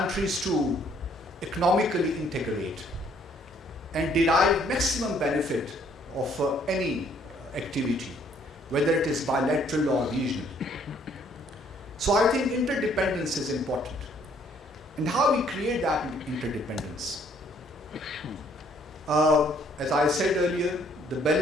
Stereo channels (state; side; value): normal; both; correlation 0.63